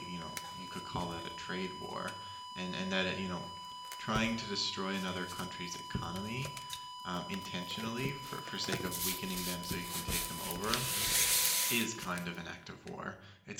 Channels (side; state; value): both; identical; correlation 1.00